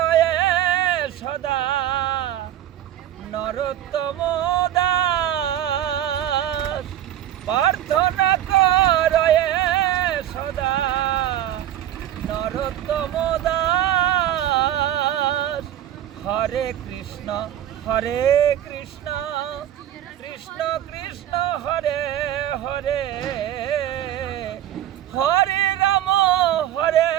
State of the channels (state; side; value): quieter; left; 11.9 dB